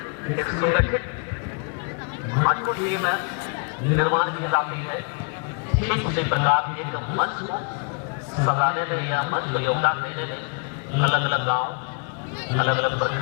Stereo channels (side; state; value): right; quieter; 38.5 dB